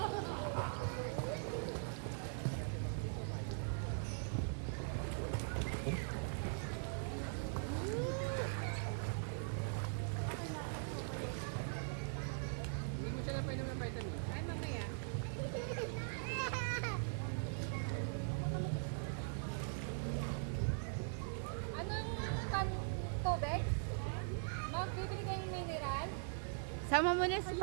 Hindi mo siya napainom ng vitamin. Ay, mamaya. Sama mo na si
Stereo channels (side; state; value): left; silent; digital silence